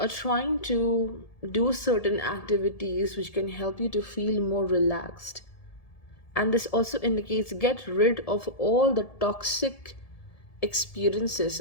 trying to do certain activities which can help you to feel more relaxed. And this also indicates get rid of all the toxic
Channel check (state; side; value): late; right; 1.7 ms